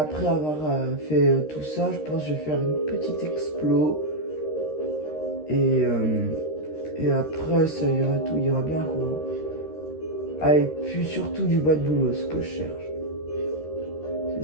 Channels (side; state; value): right; late; 13 ms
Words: avoir fait tout ça, je pense que je vais faire une petite explo. Et après, ça ira, tout ira bien quoi. Ah, et puis surtout du bois de boulot, ce que je cherche.